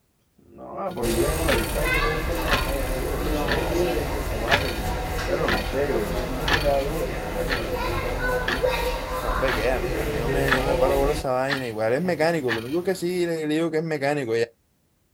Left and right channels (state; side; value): identical; both; correlation 1.00